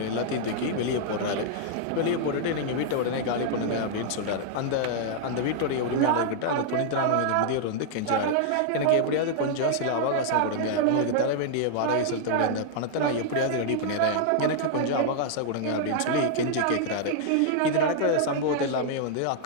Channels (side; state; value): both; different; correlation -0.01